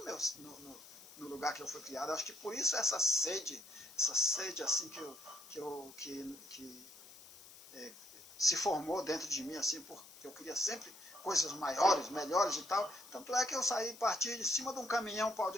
no lugar que eu fui criado. Acho que por isso essa sede assim que se formou dentro de mim, assim, porque eu queria sempre coisas maiores, melhores e tal. Tanto é que eu parti de cima de um caminhão, um pau de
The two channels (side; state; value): left; noise; hiss, 19 dB below the sound